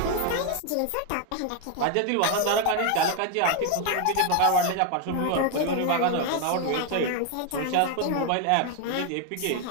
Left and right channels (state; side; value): different; both; correlation 0.01